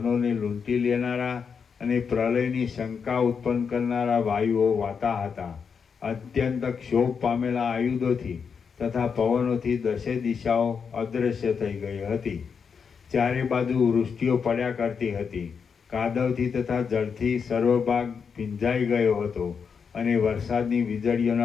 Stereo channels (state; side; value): quieter; right; 6.2 dB